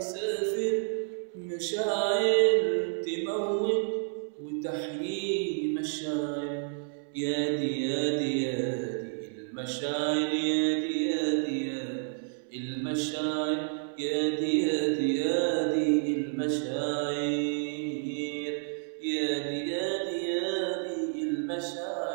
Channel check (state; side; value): silent; left; 58 dB below the other